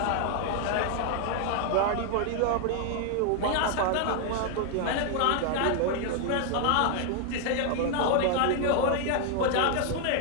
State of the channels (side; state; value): both; different; correlation 0.00